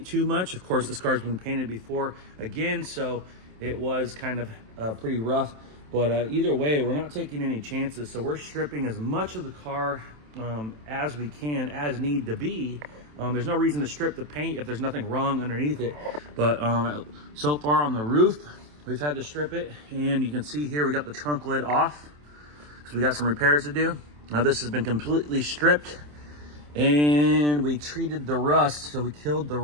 too much. Of course, this car's been painted before again, so it was kind of pretty rough. But either way, we're not taking any chances. So we're stripping as much of the car as we can, as need to be. There's no reason to strip the paint if there's nothing wrong underneath it. But so far on the roof, we've had to strip it. And you can see here, we got the trunk lid off because we got some repairs to do. Now this has been completely stripped, and we treated the rust, so we killed the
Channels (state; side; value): late; left; 27 ms